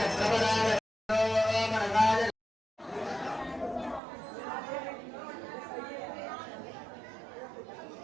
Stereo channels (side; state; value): left; drops out; at 4.0 s